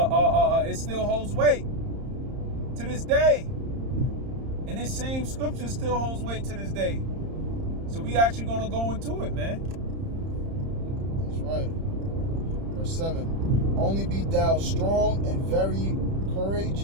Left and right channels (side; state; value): left; late; 31 ms